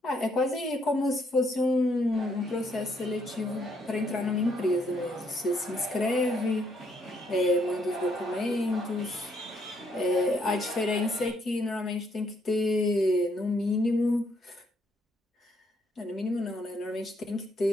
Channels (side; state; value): both; normal; correlation 0.71